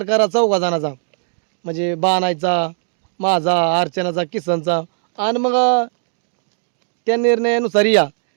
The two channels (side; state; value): left; silent; 67 dB below the other